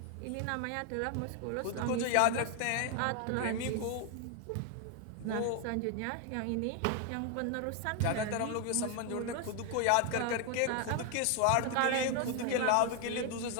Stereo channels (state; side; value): different; both; correlation 0.01